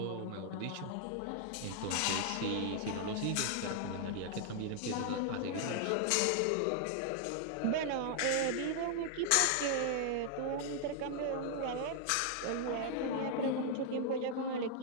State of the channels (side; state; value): both; different; correlation 0.00